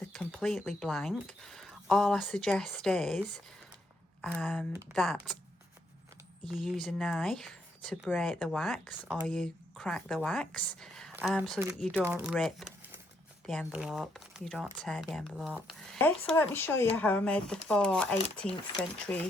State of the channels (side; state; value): both; normal; correlation 0.74